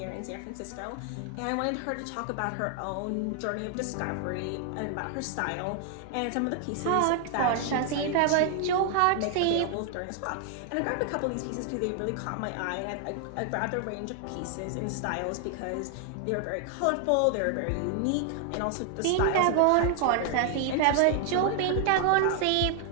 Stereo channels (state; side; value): different; both; correlation 0.00